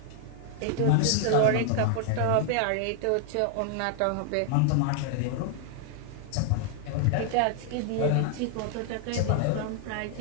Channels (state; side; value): different; both; correlation 0.00